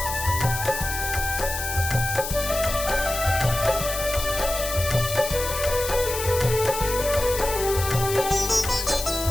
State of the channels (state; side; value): noise; left; hiss, 6 dB below the sound